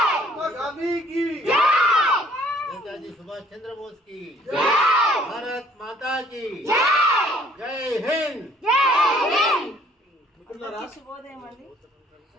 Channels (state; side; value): normal; both; correlation 0.59